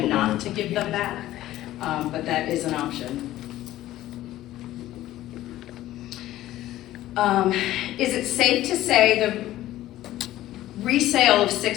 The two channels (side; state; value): right; quieter; 14.6 dB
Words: not to give them back, but that is an option. Is it safe to say the resale of